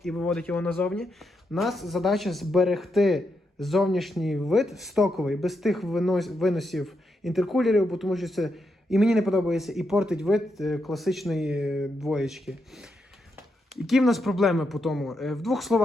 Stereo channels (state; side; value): normal; both; correlation 0.82